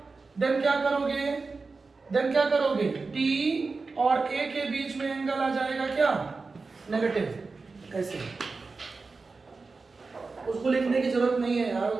देन क्या करोगे? टी और ए के बीच में एंगल आ जाएगा क्या? नेगेटिव। ऐसे उसको लिखने की जरूरत नहीं है यार, वो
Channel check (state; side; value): quieter; left; 4.1 dB